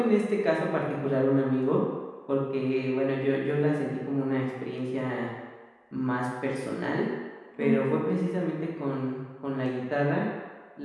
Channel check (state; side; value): identical; both; correlation 1.00